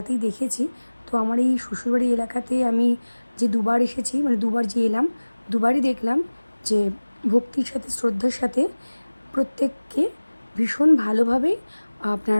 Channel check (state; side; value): inverted; both; correlation -1.00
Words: দেখেছি। তো আমার এই শ্বশুরবাড়ি এলাকাতে আমি যে দুবার এসেছি, মানে দুবার যে এলাম, দুবারই দেখলাম যে ভক্তির সাথে শ্রদ্ধার সাথে প্রত্যেককে ভীষণ ভালোভাবে